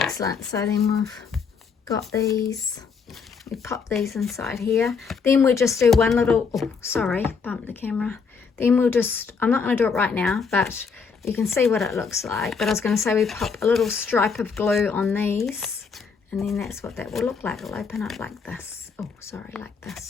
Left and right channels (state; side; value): quieter; right; 5.5 dB